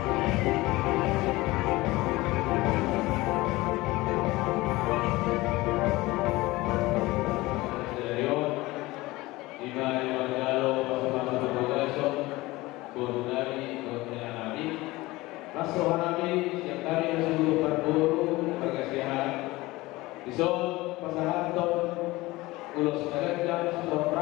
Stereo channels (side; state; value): right; quieter; 20.1 dB